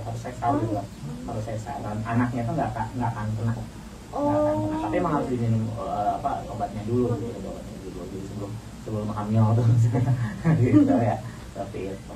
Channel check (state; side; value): identical; both; correlation 1.00